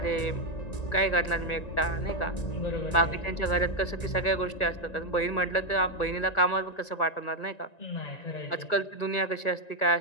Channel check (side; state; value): right; late; 1.9 ms